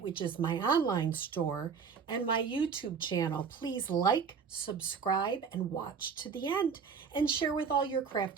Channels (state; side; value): quieter; left; 6.1 dB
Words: which is my online store, and my YouTube channel. Please like, subscribe, and watch to the end, and share with all your